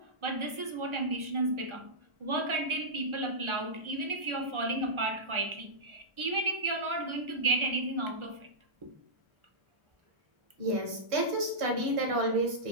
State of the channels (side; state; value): left; late; 1.4 ms